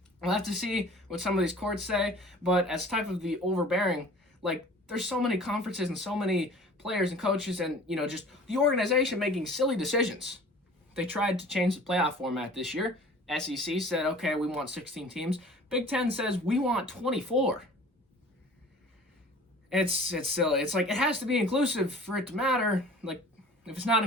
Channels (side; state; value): both; normal; correlation 0.46